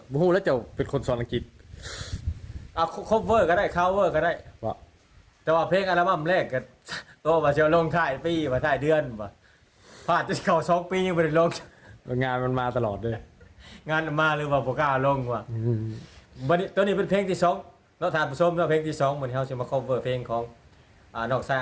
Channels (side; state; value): both; identical; correlation 1.00